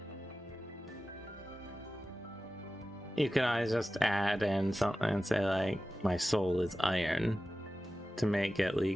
You can always just add in something and say like, my soul is iron, to make it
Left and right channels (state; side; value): normal; both; correlation 0.94